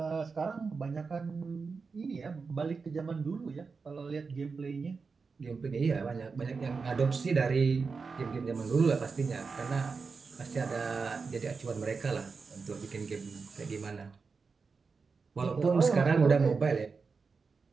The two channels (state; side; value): quieter; left; 4.8 dB